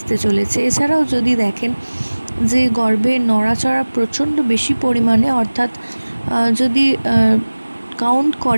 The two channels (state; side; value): inverted; both; correlation -1.00